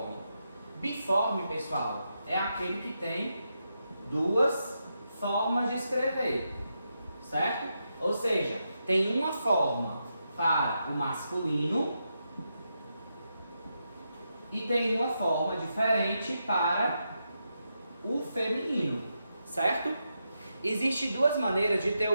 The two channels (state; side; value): inverted; both; correlation -0.85